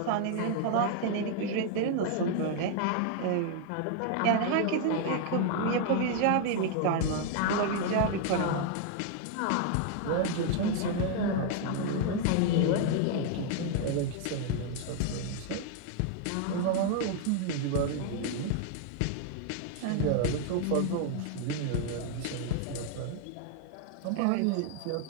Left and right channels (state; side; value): different; both; correlation 0.00